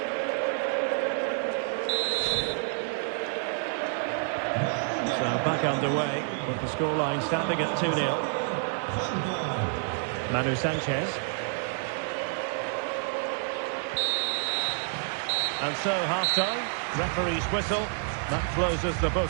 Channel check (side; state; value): left; silent; 59 dB below the other